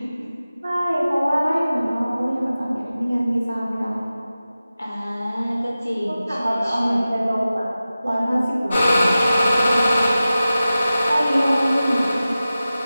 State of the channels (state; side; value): inverted; both; correlation -0.95